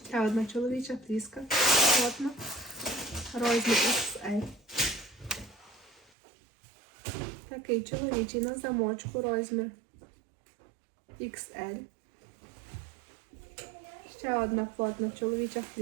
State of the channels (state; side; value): drops out; left; at 6.1 s